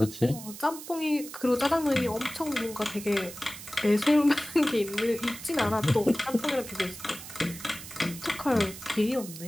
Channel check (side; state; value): right; noise; hiss, 13 dB below the sound